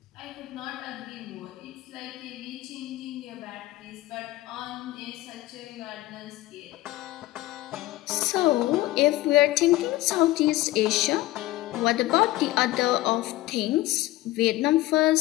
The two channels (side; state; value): right; quieter; 17.3 dB